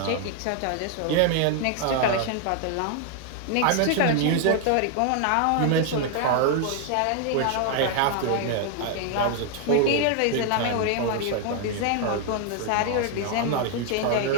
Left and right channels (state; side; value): different; both; correlation 0.00